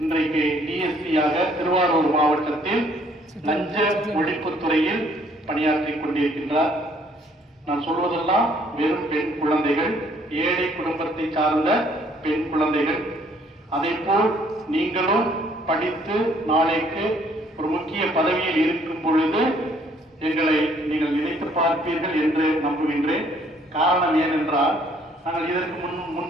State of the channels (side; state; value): both; normal; correlation 0.63